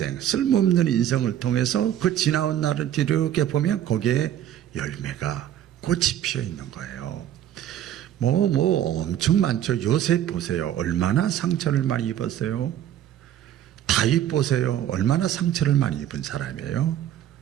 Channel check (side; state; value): left; quieter; 11.2 dB